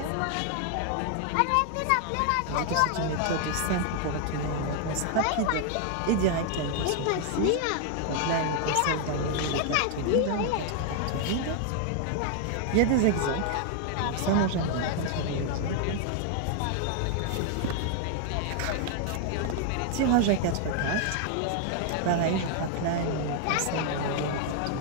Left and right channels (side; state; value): both; different; correlation 0.00